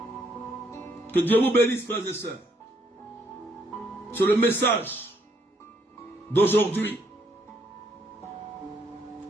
Que Dieu vous bénisse, frères et sœurs. C'est le message d'aujourd'hui.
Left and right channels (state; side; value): normal; both; correlation 0.71